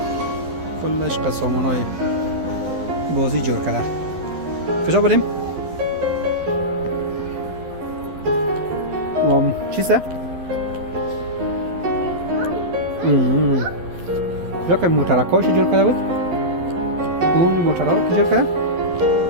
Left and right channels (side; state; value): left; late; 12 ms